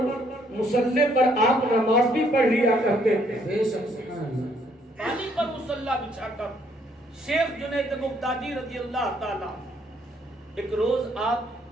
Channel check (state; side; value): normal; both; correlation 0.67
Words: مصلی پر آپ نماز بھی پڑھ لیا کرتے تھے۔ پانی پر مصلی بچھا کر شیخ جنید بغدادی رضی اللہ تعالیٰ ایک روز آپ